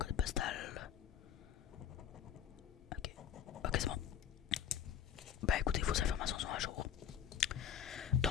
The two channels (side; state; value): right; quieter; 9.0 dB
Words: postal. Ok. Ok, c'est bon. Bah écoutez, vos informations sont à jour.